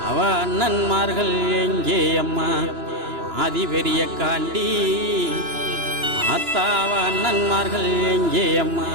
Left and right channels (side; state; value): left; late; 2.9 ms